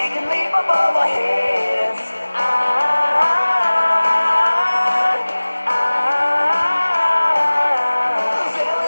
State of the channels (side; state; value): both; inverted; correlation -1.00